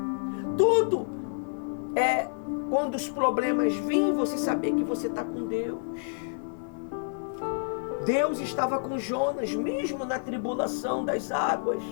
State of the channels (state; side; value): silent; right; digital silence